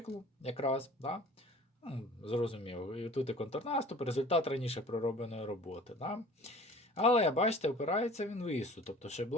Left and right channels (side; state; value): both; normal; correlation 0.46